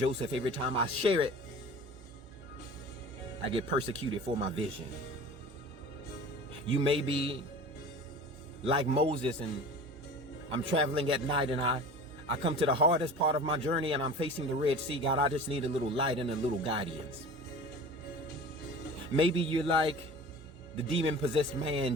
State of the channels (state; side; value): normal; both; correlation 0.39